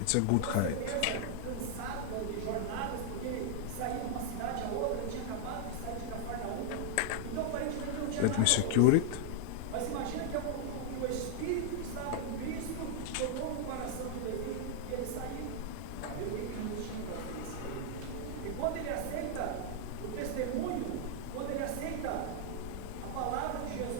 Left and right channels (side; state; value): both; different; correlation 0.00